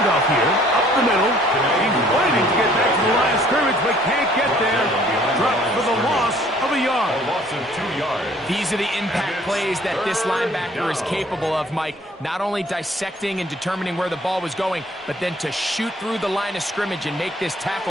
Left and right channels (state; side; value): normal; both; correlation 0.57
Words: here, up the middle. He's waiting to get back to the line of scrimmage, but can't get there. Dropped for the loss of a yard. A loss of 2 yards. These are the impact plays that this linebacker is capable of, Mike. Not only dissecting and determining where the ball was going, but then to shoot through the line of scrimmage and make this